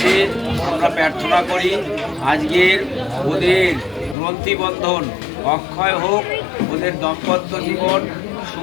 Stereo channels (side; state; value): right; drops out; at 4.2 s